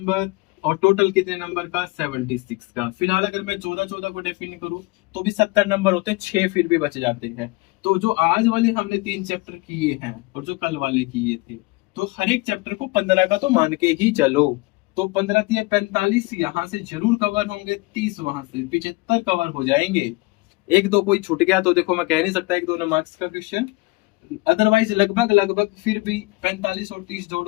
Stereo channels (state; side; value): quieter; right; 23.8 dB